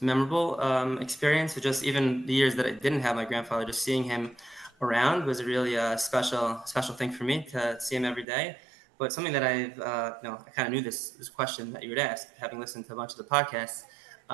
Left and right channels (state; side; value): drops out; left; at 8.2 s